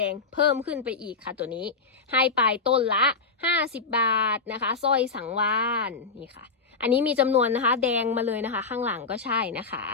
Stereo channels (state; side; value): quieter; right; 4.5 dB